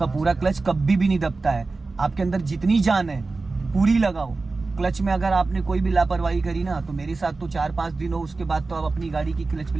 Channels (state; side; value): quieter; left; 3.7 dB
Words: पूरा क्लच कभी भी नहीं दबता है। आपके अंदर जितनी जान है पूरी लगाओ क्लच में। अगर आपने कोई भी लापरवाही करी ना तो मेरे साथ तो 4-5 दिन हो, उसके बाद तो आप अपनी गाड़ी की क्लच